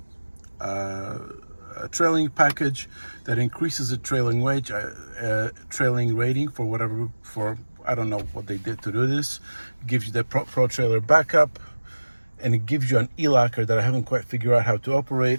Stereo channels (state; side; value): inverted; both; correlation -1.00